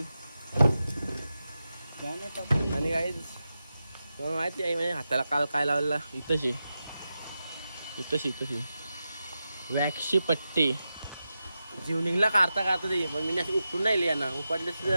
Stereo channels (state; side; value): inverted; both; correlation -0.91